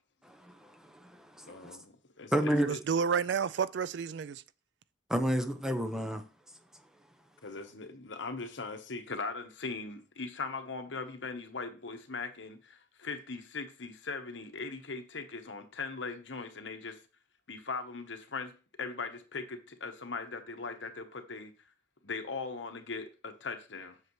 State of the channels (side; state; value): both; normal; correlation 0.34